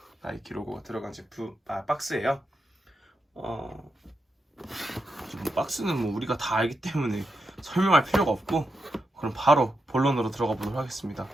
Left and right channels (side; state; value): both; normal; correlation 0.85